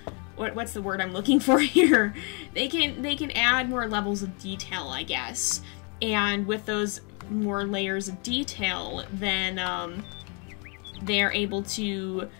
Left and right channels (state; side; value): quieter; right; 35.3 dB